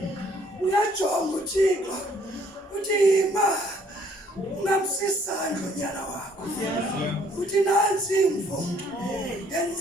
Uyajonga uThixo uthi yima ungamsisandla unyana wakho. Uthi nansi imvo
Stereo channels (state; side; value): normal; both; correlation 0.63